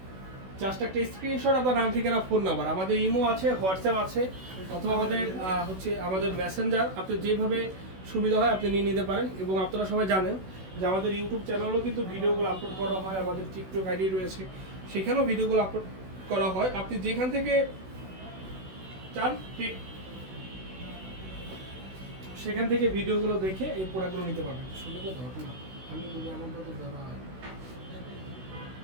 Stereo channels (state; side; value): late; left; 16 ms